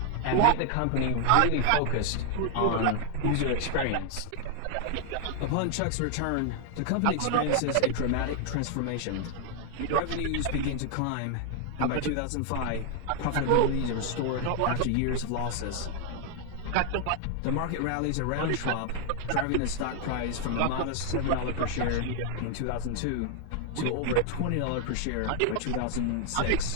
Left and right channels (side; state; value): both; different; correlation 0.00